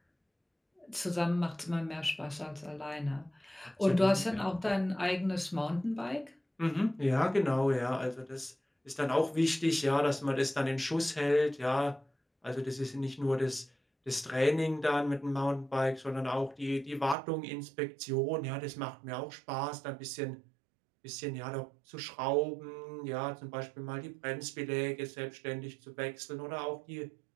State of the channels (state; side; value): drops out; left; at 17.2 s